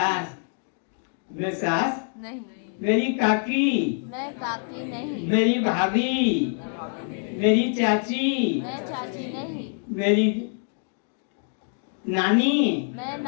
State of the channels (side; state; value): right; silent; 56 dB below the other